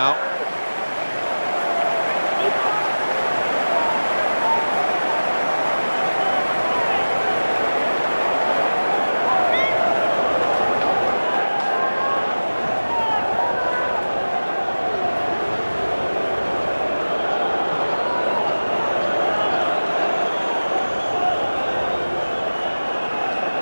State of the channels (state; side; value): inverted; both; correlation -1.00